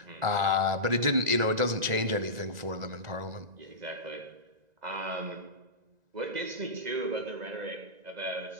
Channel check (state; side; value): late; left; 2.0 ms